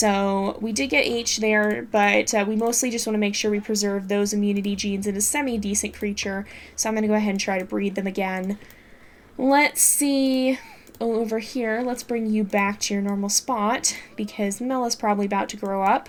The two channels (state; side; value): identical; both; correlation 1.00